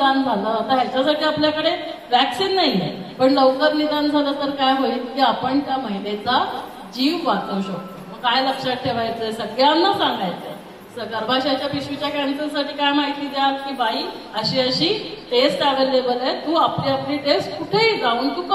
झालं, आता ह्याच्यासाठी आपल्याकडे वॅक्सिन नाहीये, पण लवकर निदान झालं तर काय होईल की आपण त्या महिलेचा जीव वाचवू शकतो. मग काय लक्षात ठेवायचंय, सगळ्यांना सांगायचंय, गर्भाशयाच्या पिशवीच्या कॅन्सरसाठी काय माहिती द्या की बाई अशी टेस्ट अवेलेबल आहे, तू आपली टेस्ट कुठेही जाऊन तू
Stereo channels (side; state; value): both; identical; correlation 1.00